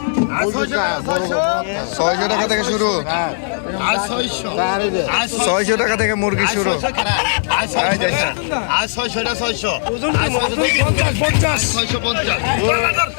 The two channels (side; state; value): right; silent; digital silence